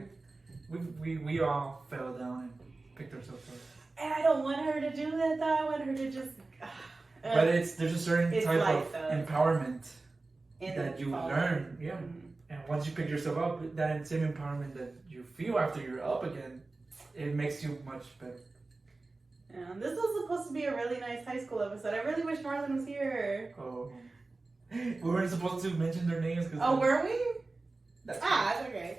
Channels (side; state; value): left; quieter; 3.4 dB